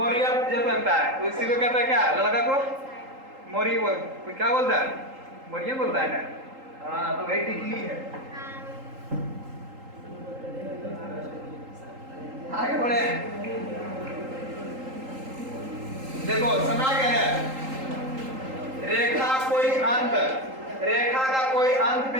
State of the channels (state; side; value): late; left; 3.8 ms